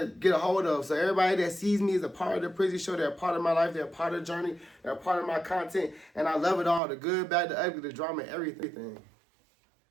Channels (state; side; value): drops out; left; at 6.8 s